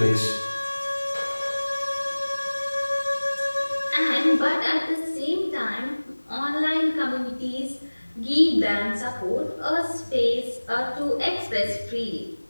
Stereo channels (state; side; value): inverted; both; correlation -1.00